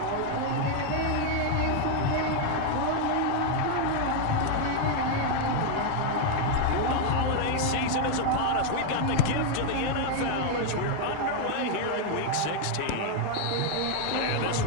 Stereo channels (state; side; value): different; both; correlation 0.00